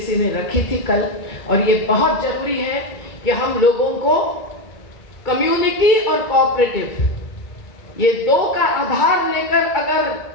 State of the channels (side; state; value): right; late; 2.2 ms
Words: ने रखी थी कल, और ये बहुत जरूरी है कि हम लोगों को कम्युनिटी और कोऑपरेटिव, ये दो का आधार लेकर अगर